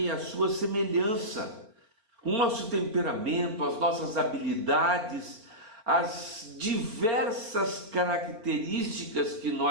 e a sua semelhança. O nosso temperamento, as nossas habilidades, as diversas características que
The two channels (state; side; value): late; left; 4.3 ms